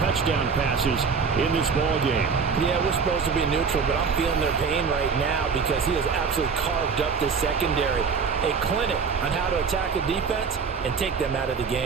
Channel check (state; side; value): quieter; left; 5.5 dB